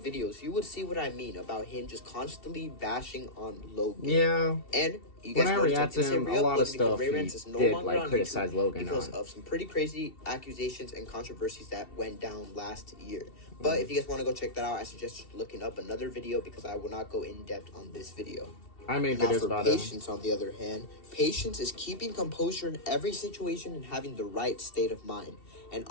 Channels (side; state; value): right; late; 2.7 ms